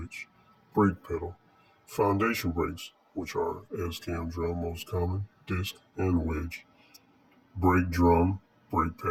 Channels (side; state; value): both; identical; correlation 1.00